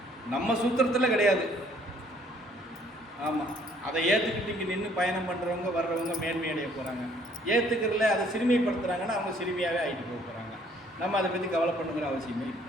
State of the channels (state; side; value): normal; both; correlation 0.61